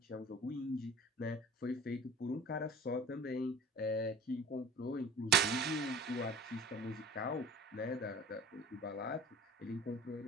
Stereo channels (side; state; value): both; normal; correlation 0.42